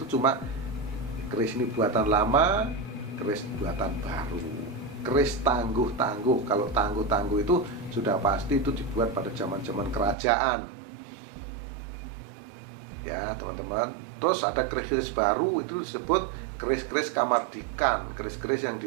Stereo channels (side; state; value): left; drops out; at 10.2 s